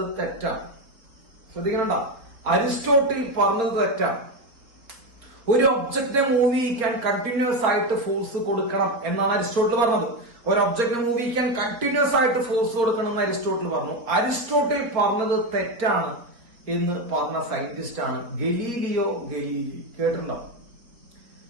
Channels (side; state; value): left; late; 3.9 ms